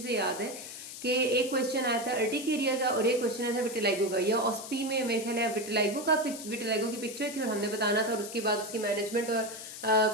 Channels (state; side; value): noise; left; hiss, 11 dB below the sound